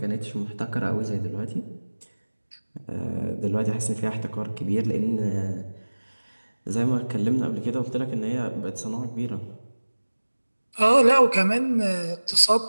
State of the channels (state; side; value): inverted; both; correlation -1.00